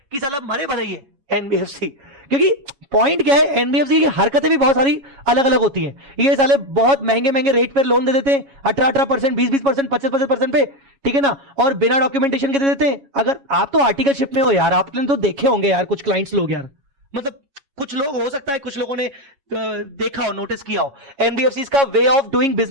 कि साला मरे भले ये एनबीएफसी, क्योंकि पॉइंट क्या है, एनबीएफसी की हरकतें भी बहुत सारी अलग अलग होती हैं। ये साले बहुत महंगे महंगे रेट पर लोन दे देते हैं, 18% 20% 25% पे, ठीक है ना, और बिना डॉक्यूमेंटेशन के दे देते हैं। अगर आप तो आर्टिकलशिप में हो यार, आपने तो देखे होंगे यार कुछ क्लाइंट्स लोग यार, मतलब कुछ लोग हो सकता है कुछ लोगों ने देखा हो, नोटिस किया हो एनबीएफसी का वे ऑफ डूइंग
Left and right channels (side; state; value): left; late; 7.3 ms